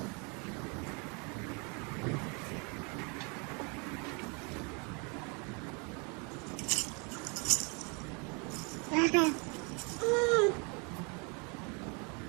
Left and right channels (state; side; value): quieter; left; 32.9 dB